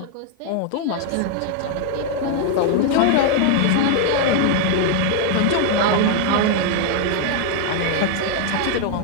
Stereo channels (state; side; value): different; both; correlation 0.00